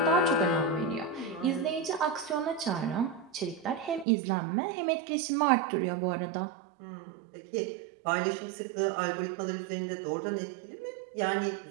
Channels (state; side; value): drops out; left; at 4.0 s